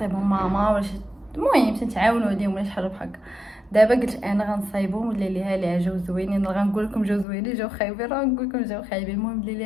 ماما ولا شي، المهم تنتعاونوا عليهم ولا شي حاجه بحال هكا. دابا قلت انا غنصايبهم ولا ليها ليها جاو زوينين، غنقول لكم جاو زوينين جاو خايبين، راه نقول لكم جاو خايبين، المهم اللي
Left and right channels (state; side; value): drops out; right; at 7.2 s